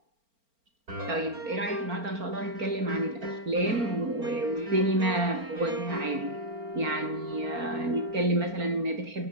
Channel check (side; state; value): left; late; 4.4 ms